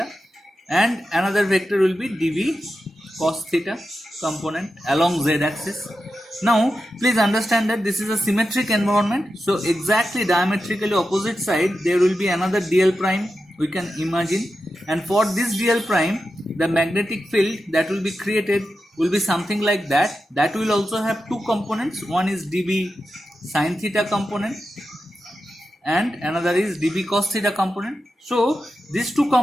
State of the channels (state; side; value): normal; both; correlation 0.90